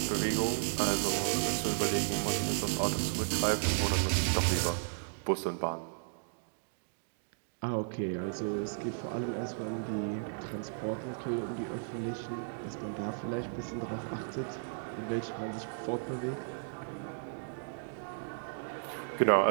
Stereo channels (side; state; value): left; silent; digital silence